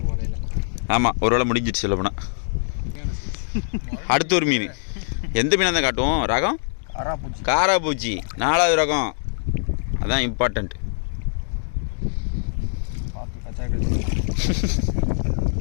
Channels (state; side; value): silent; right; digital silence